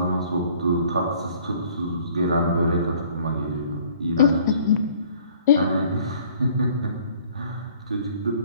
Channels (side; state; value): both; inverted; correlation -0.56